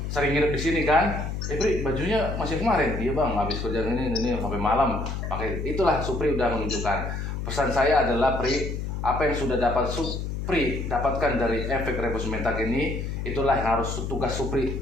sering nginep di sini kan. Pri, bajunya masih kemarin. Iya bang, habis kerja ini sampai malam pakai. Itulah Supri udah menunjukkan. Pesan saya adalah Pri, apa yang sudah dapat Supri dapatkan dari efek revolusi mental ini, itulah yang harus tugas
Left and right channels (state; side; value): noise; left; hum, 4 dB below the sound